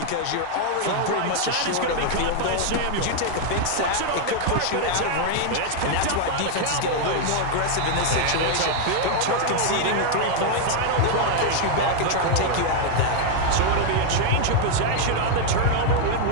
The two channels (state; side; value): different; both; correlation 0.00